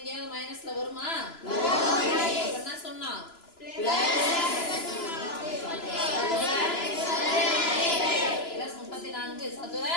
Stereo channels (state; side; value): late; right; 2.9 ms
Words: மைனஸ்ல வருமா? என்ன சொன்னா +34 சதுர